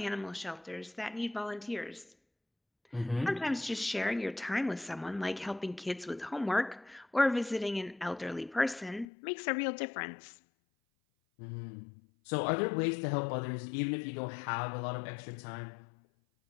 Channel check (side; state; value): right; drops out; at 9.1 s